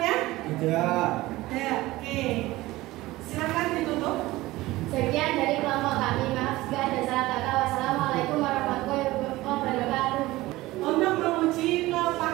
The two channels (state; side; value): quieter; left; 18.4 dB